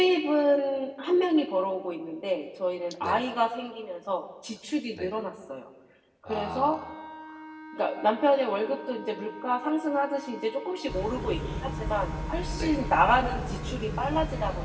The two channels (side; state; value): both; identical; correlation 1.00